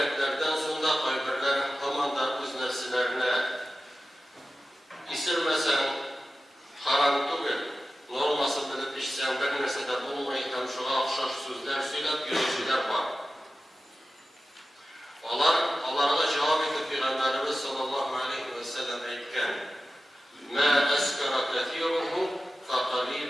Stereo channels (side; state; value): both; normal; correlation 0.94